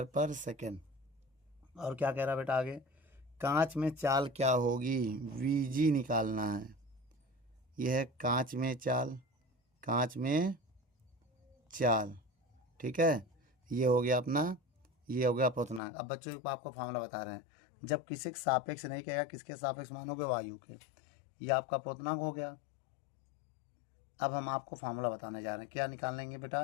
पर सेकेंड। और क्या कह रहा है बेटा आगे, कांच में चाल क्या होगी, VG निकालना है। यह है कांच में चाल, कांच में चाल। ठीक है, ये हो गया अपना, ये हो गया अपवर्तनांक। अब बच्चों को आपको फार्मूला बता रहे हैं, जब किसी के सापेक्ष नहीं कहेगा, किसके सापेक्ष मानोगे, वायु के, ये आपका अपवर्तनांक हो गया। अब हम आपको फार्मूला बताने जा रहे हैं, क्या निकालेंगे बेटा।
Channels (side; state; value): right; drops out; at 15.8 s